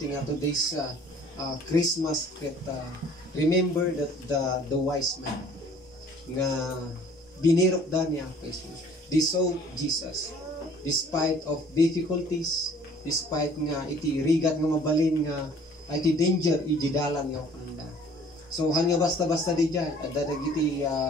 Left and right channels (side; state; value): both; normal; correlation 0.53